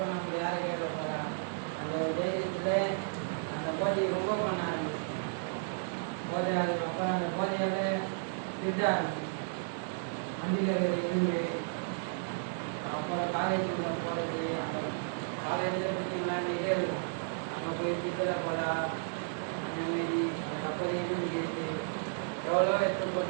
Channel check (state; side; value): silent; left; digital silence